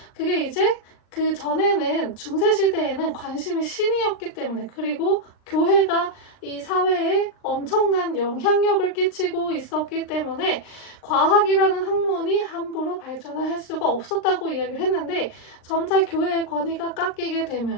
그게 이제 그 전에는 중세시대에는 관심이 신이었기 때문에, 그리고 교회가 이 사회에 엄청난 영향력을 끼치고 있었기 때문에 과학이라는 학문이 함부로 발전을 할 수가 없었다고 이야기를 했는데, 점차 교회의 권위가 깎이게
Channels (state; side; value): late; right; 39 ms